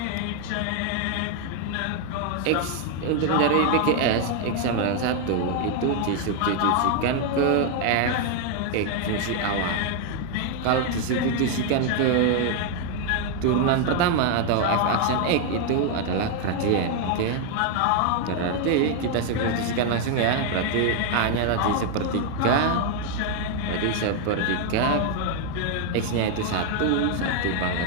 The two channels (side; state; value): both; different; correlation 0.01